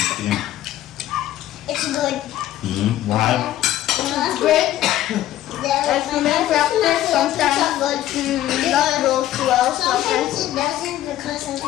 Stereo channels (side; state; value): right; quieter; 13.4 dB